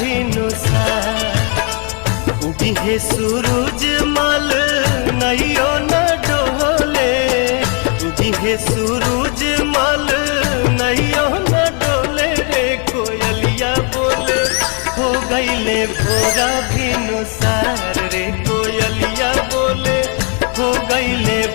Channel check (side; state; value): right; quieter; 38.1 dB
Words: भिनुसार। दिहे सूरज मल नैयो न डोले, दिहे सूरज मल नैयो न डोले रे कोयलिया बोले हो गईले भोरा भिनुसार रे कोयलिया बोले हो गईले